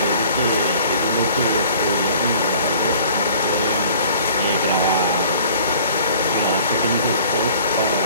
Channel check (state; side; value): inverted; both; correlation -0.50